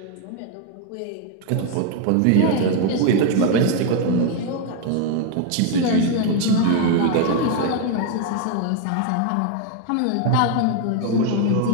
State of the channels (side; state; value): both; different; correlation 0.01